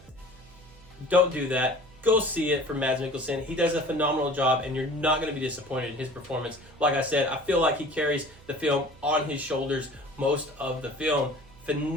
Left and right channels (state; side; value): noise; right; hum, 23 dB below the sound